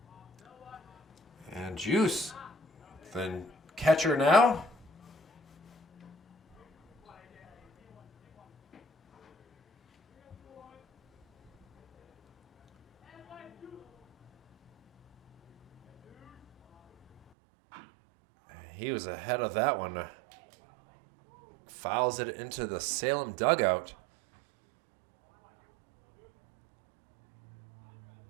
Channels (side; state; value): left; drops out; at 17.2 s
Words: And Juice, then catcher now. He was ahead of that one. Fouls it into the Salem dugout.